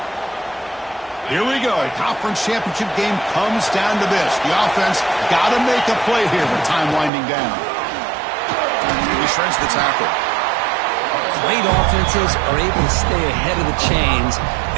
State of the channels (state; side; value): drops out; left; at 7.1 s